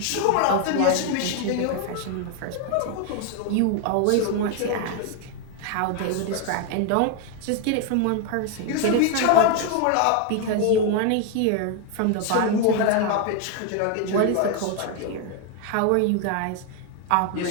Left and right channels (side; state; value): both; different; correlation 0.01